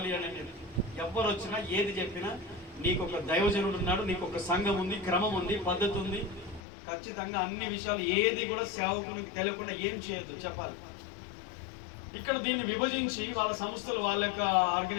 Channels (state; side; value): drops out; right; at 6.6 s